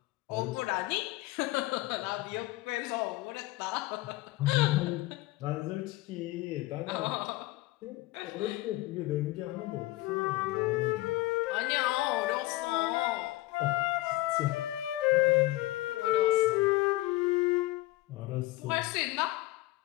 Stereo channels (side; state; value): right; quieter; 18.5 dB